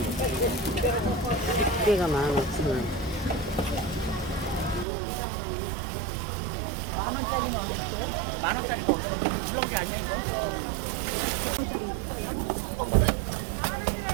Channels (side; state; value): left; drops out; at 4.9 s